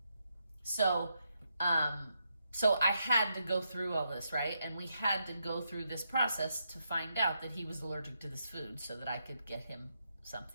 So I had to go through all this, right? And we had to go through this process to find out that he was allergic to this food so that I could get him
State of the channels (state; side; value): inverted; both; correlation -0.81